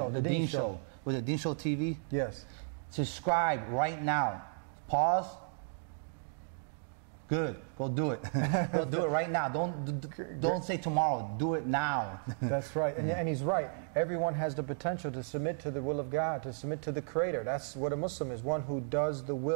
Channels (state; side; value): silent; left; digital silence